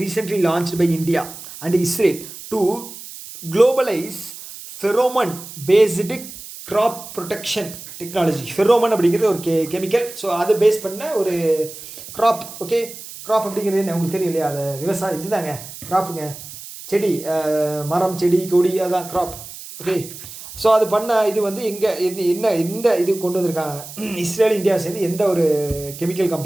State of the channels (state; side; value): noise; right; hiss, 14 dB below the sound